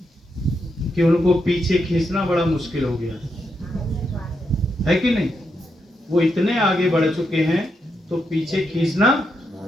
कि उनको पीछे खींचना बड़ा मुश्किल हो गया है कि नहीं। वो इतने आगे बढ़ चुके हैं तो पीछे खींचना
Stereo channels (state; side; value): normal; both; correlation 0.82